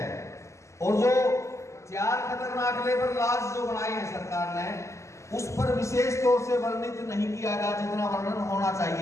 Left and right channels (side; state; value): right; late; 0.14 ms